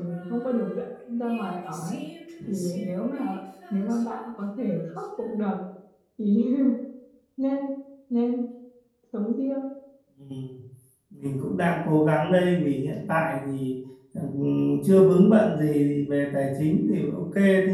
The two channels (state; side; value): identical; both; correlation 1.00